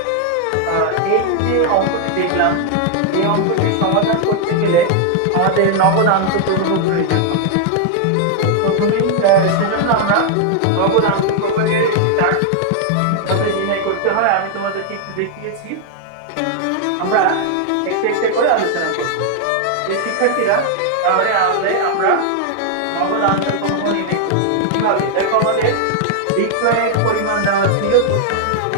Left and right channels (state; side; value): different; both; correlation 0.00